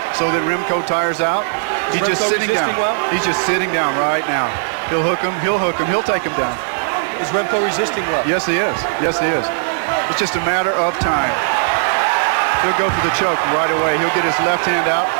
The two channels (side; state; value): left; silent; digital silence